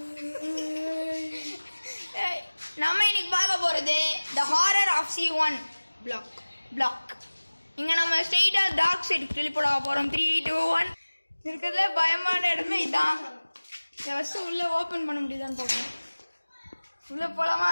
நம்ம இன்னைக்கு பார்க்க போறது The Horror of C1 Block. இங்க நம்ம ஸ்ட்ரெயிட்டா டார்க் சைடு டெலிபோர்ட் ஆக போறோம். 3 2 1. இருக்கிறதுல பயமான இடமே இதான். ஃபர்ஸ்ட் உள்ள ஓபன் பண்ண முடியுதான்னு பார்ப்போம். உள்ள போலாமா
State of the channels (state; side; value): inverted; both; correlation -1.00